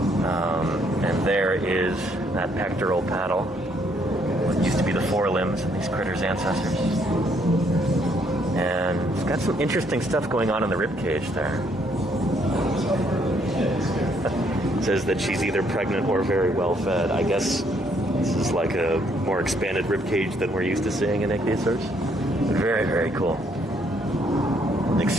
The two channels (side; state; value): both; normal; correlation 0.69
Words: And there is that pectoral paddle. What used to be the forelimbs of these critters' ancestors. And it's got some interesting stuff going on in the rib cage there. It says that she's either pregnant or very well fed. I guess this is like a more expanded rib cage than we're used to seeing in ichthyosaurs. Very, very cool. An